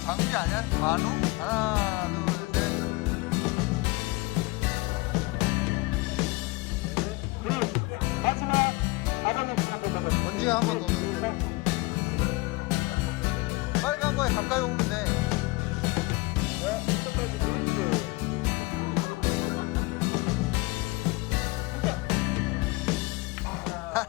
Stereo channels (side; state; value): right; quieter; 22.9 dB